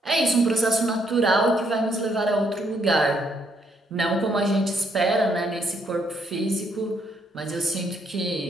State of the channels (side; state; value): both; normal; correlation 0.73